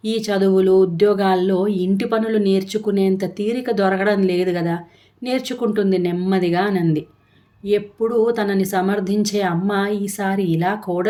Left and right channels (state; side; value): identical; both; correlation 1.00